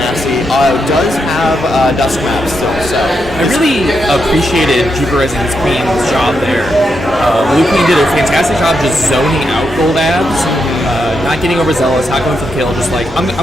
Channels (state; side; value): normal; both; correlation 0.83